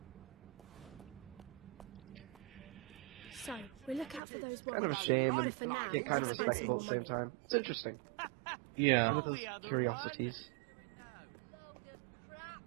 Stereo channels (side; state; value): left; drops out; at 4.2 s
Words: So, we look out for those Kind of a warrants. shame But and for now, yet kind of let's respectable at find the same time. It's interesting. Yeah. Some of those curiosities. Load of crap.